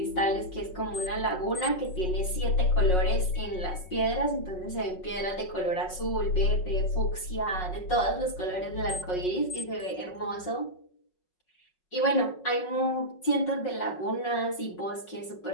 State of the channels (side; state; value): right; late; 5.5 ms